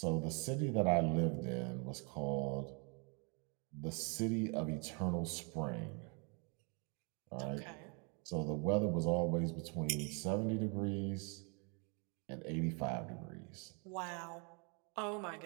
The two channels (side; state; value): left; quieter; 35.1 dB